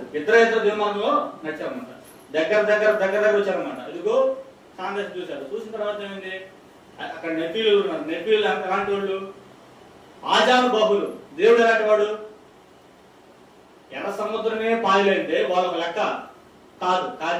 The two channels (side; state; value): both; identical; correlation 1.00